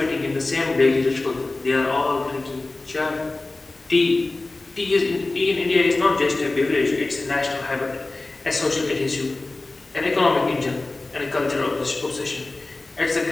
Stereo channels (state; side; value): quieter; right; 3.2 dB